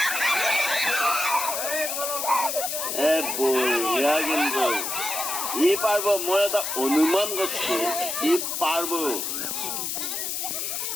বঢ়িয়া কিন্তু ই পারব মই এটা অনুমান করছি ই পারব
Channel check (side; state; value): left; noise; hiss, 2 dB below the sound